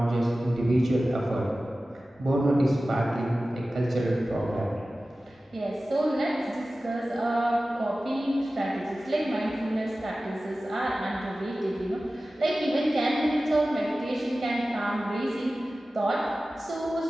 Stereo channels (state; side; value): normal; both; correlation 0.96